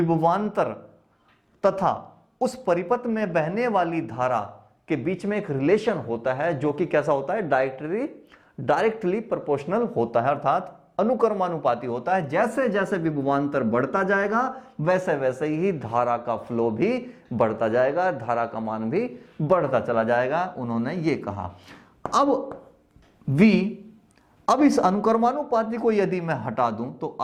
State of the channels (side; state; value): both; identical; correlation 1.00